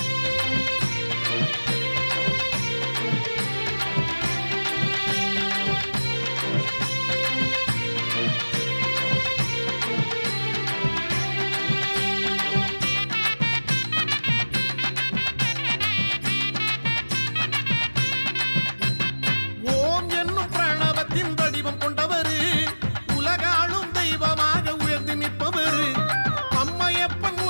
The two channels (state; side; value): inverted; both; correlation -1.00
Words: ஓம் என்னும் பிரணவத்தின் வடிவம் கொண்டவரு, உலகாளும் தெய்வமாக உயர்ந்து நிற்பவரு. அம்மையப்பன்